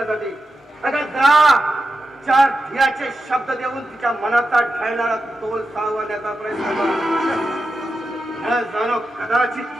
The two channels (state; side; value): normal; both; correlation 0.89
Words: अगं जा. 4 धीराचे शब्द देऊन तिच्या मनाचा ढळणारा तोल सावरण्याचा प्रयत्न कर. जाणो